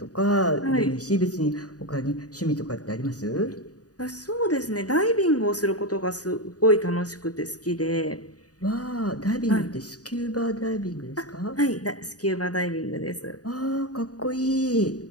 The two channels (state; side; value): late; right; 0.68 ms